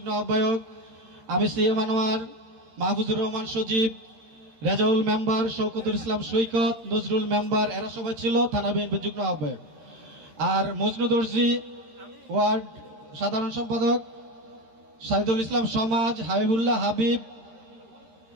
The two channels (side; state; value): left; late; 13 ms